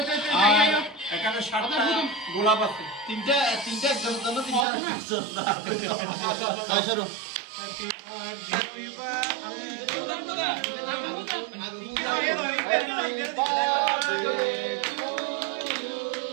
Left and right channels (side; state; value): left; drops out; at 4.7 s